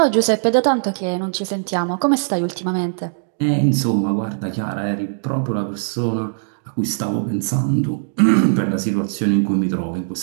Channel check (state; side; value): silent; left; digital silence